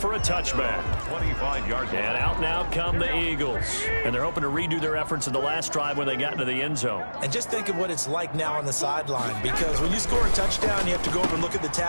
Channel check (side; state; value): both; inverted; correlation -1.00